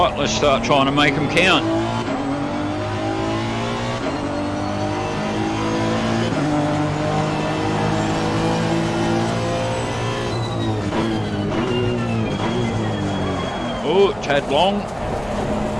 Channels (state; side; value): noise; right; hum, 21 dB below the sound